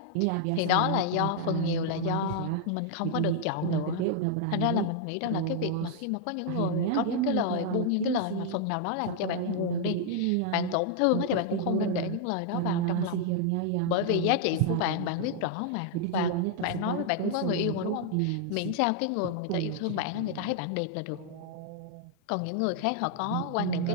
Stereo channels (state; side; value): different; both; correlation 0.00